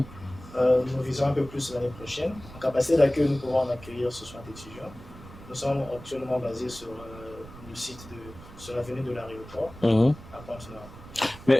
visons un peu plus l'année prochaine. En capacité d'accueil, nous pourrons en accueillir 60 étudiants. Nous sommes actuellement basés sur le site sur l'avenue de l'aéroport à Pointe-Noire.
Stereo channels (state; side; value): noise; right; rumble, 17 dB below the sound